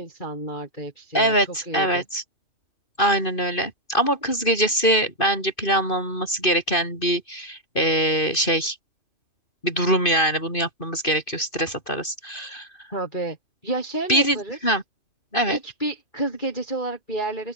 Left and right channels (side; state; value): right; late; 2.5 ms